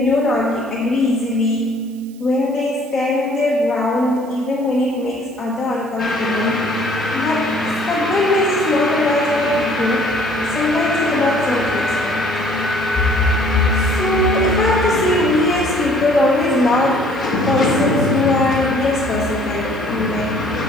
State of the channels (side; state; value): right; noise; hiss, 27 dB below the sound